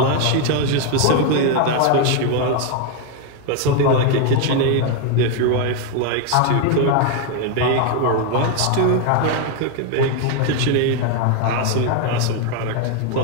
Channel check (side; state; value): both; different; correlation 0.01